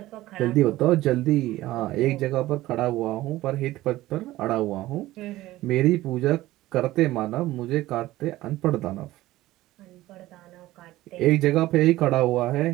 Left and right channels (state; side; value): quieter; left; 16.6 dB